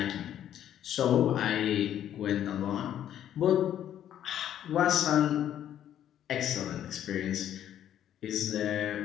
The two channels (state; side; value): quieter; right; 10.8 dB